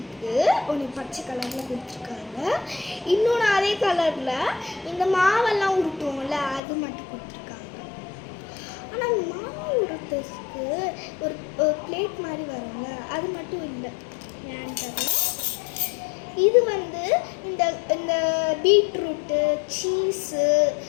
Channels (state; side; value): drops out; right; at 6.6 s